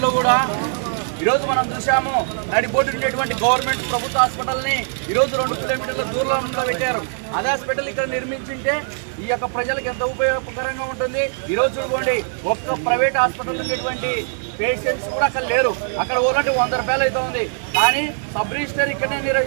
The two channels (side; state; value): left; silent; digital silence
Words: కూడా ఈరోజు మనం చూసాము. నడిబొడ్డు ఉండేటువంటి గవర్నమెంట్ ప్రభుత్వ హాస్పిటల్ని ఈరోజు 2 కిలోమీటర్ల దూరంలో పెట్టారు. అదే హాస్పిటల్ ఇక్కడ నిర్మించింటే ఈ యొక్క ప్రజలకు ఎంత ఉపయోగకరంగా ఉంటుంది. ఈరోజు చూడండి, ఒక్క ప్రైవేట్ హాస్పిటల్ ఉండేటువంటి పేషెంట్స్ కూడా అక్కడ లేరు. అక్కడ పోవాలంటే 100 రూపాయలు అయితే ఉంది. కానీ సబ్ రిజిస్టర్ ఇక్కడనే